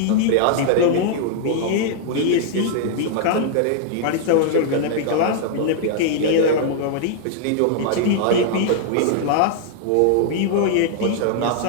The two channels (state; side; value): different; both; correlation -0.01